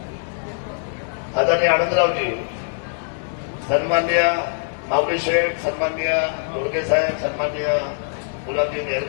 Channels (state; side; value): silent; right; digital silence